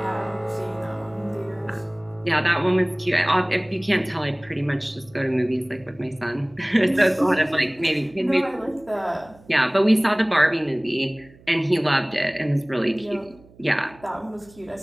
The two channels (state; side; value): noise; right; hum, 26 dB below the sound